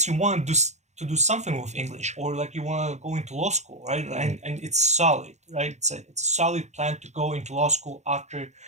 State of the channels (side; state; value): left; late; 0.33 ms